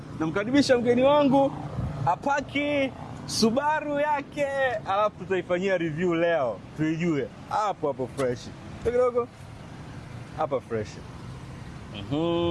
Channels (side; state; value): both; identical; correlation 1.00